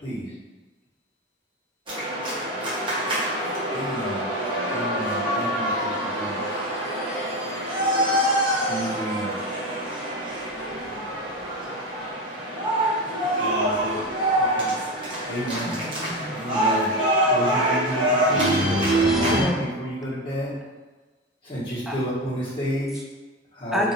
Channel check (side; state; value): both; normal; correlation 0.18